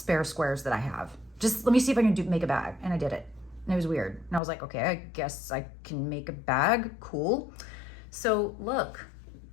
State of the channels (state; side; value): drops out; right; at 4.4 s